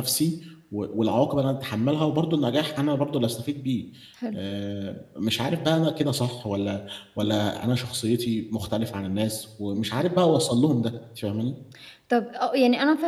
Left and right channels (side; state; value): both; identical; correlation 1.00